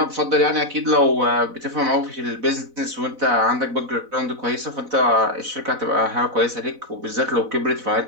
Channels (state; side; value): late; left; 4.0 ms